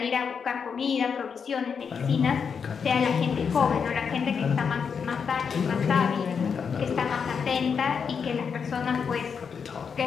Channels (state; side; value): quieter; right; 6.3 dB